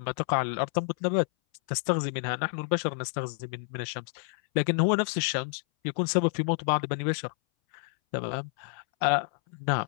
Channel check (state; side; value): silent; right; 59 dB below the other